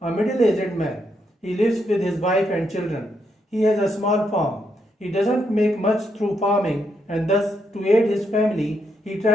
a middle-aged man. He lives with his wife and children. He has a small farm. He doesn't make much through farming and thus, to aid his family, he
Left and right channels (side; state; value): both; normal; correlation 0.79